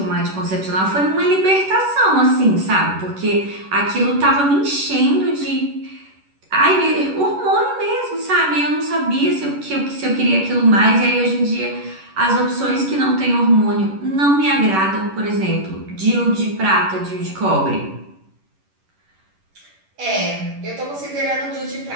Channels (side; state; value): left; late; 11 ms